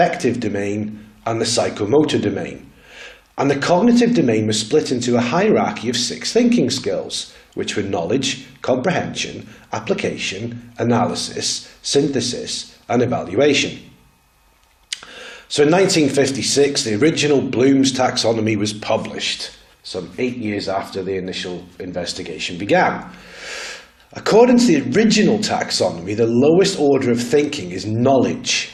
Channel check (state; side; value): identical; both; correlation 1.00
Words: domain, and the psychomotor domain. And the cognitive domain was split into a hierarchy of 6 thinking skills, which were knowledge, comprehension, application, analysis, synthesis, and evaluation. So in 1956, the original Bloom's taxonomy was published, some 8 years after the initial investigation began. According to the original taxonomy, the lowest order of thinking is knowledge,